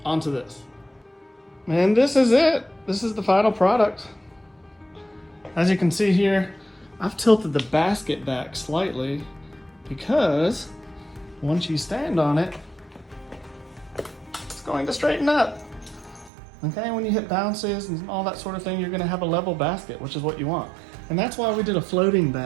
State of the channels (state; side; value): drops out; left; at 16.3 s